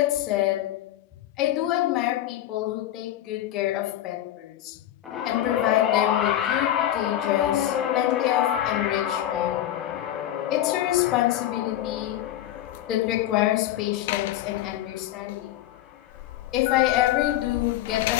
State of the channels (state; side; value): quieter; right; 12.8 dB